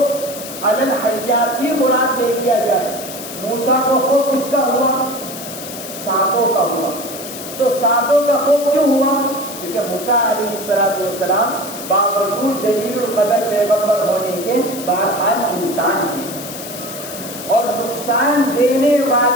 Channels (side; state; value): left; noise; hiss, 11 dB below the sound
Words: علی الحیات ہی مراد لے لیا جائے۔ موسیٰ کو خوف کس کا ہوا؟ سانپوں کا ہوا۔ تو سانپوں کا خوف کیوں ہوا؟ کیونکہ موسیٰ علیہ السلام باوجود جلیل القدر پیغمبر ہونے کے بہرحال انسان ہیں، اور نقصان دینے